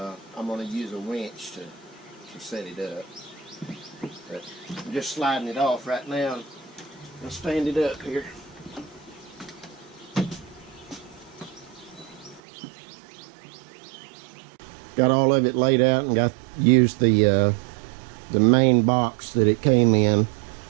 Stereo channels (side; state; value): left; drops out; at 12.4 s